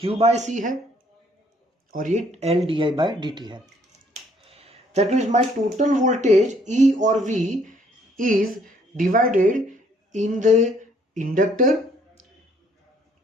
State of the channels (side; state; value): both; normal; correlation 0.64